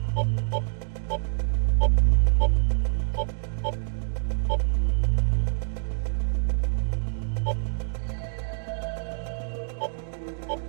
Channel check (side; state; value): left; silent; digital silence